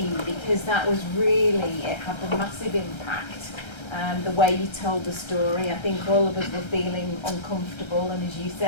because that was really, it had a massive impact. The way you told the story, I think all of us were feeling uncomfortable, and as you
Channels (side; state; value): right; late; 1.3 ms